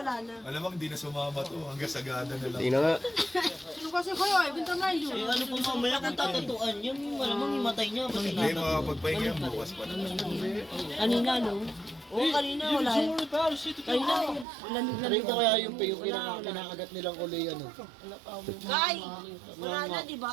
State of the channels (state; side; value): drops out; left; at 14.5 s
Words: Malamang di na sumama to, hanggang sagada na lang. Tingnan nga. Ano kasi kayo, ibenta na yun. Ano pong mamaya kung tatutuan yun, malamang himatay niya. Hindi, makapagpahinga yan bukas pa naman. Kanina, no? Oo, kanina wala. Kanina, lamig-lamig. Rito kaya yung kinakagat nilang kulay ano. Kay! Wala na, di